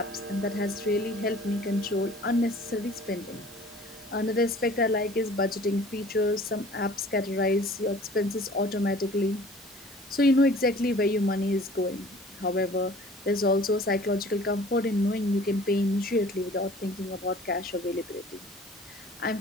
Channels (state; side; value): normal; both; correlation 0.48